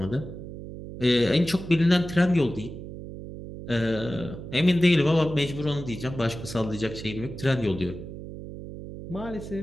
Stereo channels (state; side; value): noise; right; hum, 11 dB below the sound